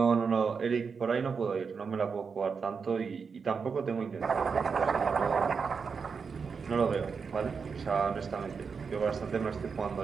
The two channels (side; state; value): left; quieter; 5.6 dB